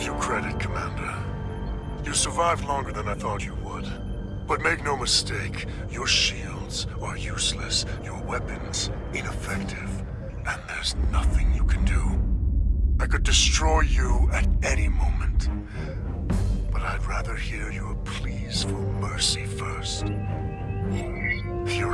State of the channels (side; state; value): both; identical; correlation 1.00